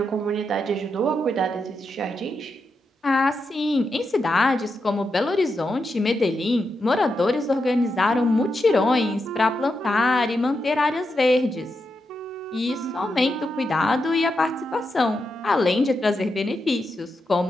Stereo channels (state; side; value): normal; both; correlation 0.86